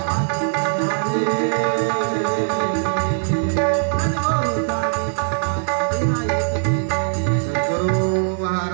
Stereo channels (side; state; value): left; silent; digital silence